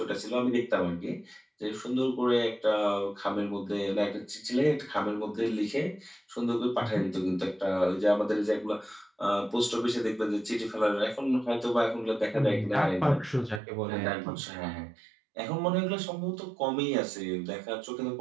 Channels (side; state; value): left; drops out; at 13.6 s